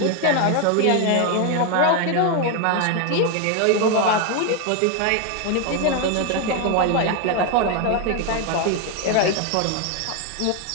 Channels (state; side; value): different; both; correlation 0.01